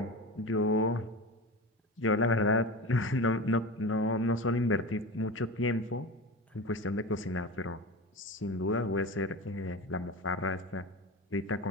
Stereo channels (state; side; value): normal; both; correlation 0.27